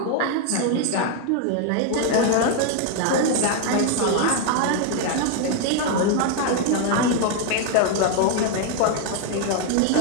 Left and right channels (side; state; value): both; different; correlation 0.01